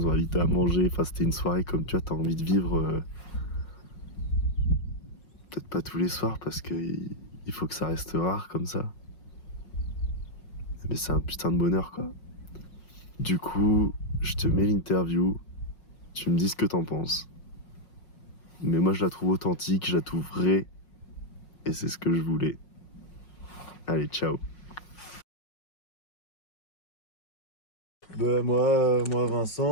ont invités à manger. Enfin, c'était une soirée comme tu vois, t'as envie de vivre. Peut-être pas tous les soirs parce qu'il faut que ça reste rare comme ça. Mais c'est un putain de bonheur, quoi. Du coup, je te mets l'interview. Tu me dis ce que t'en penses. Mais moi, je la trouve authentique, je la trouve vraie. Et c'est ce que je voulais. Allez, ciao. Moi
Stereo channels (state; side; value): late; right; 5.5 ms